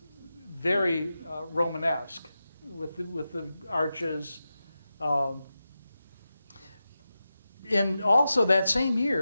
Romanesque with the arches. And also that same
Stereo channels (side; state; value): both; inverted; correlation -0.92